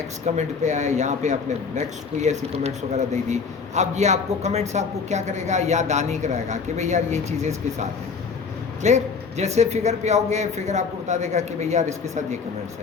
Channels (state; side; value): quieter; right; 5.3 dB